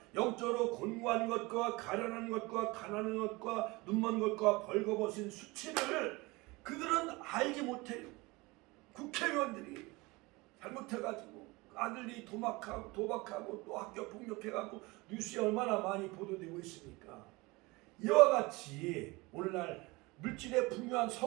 영적으로 곤고한 것과 가련한 것과 가난한 것과 눈먼 것과 벌거벗은 수치를 그들은 알지 못해요. 국회의원들이 잘못해가지고 아들이 도박하고 또 학교 폭력해가지고 뉴스에 얼마나 많이 보도되고 있습니까? 이와 같이 오늘날 물질에 풍요한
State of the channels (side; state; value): left; quieter; 23.5 dB